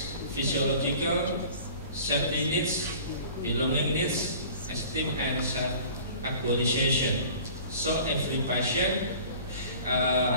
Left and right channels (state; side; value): inverted; both; correlation -0.45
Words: physiological, safety needs, belonging needs, esteem and self-actualization. So every patient